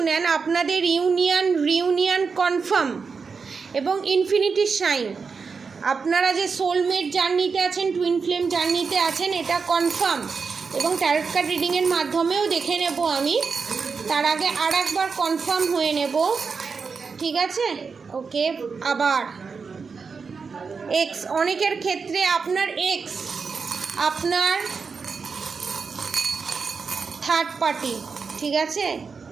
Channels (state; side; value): quieter; left; 5.2 dB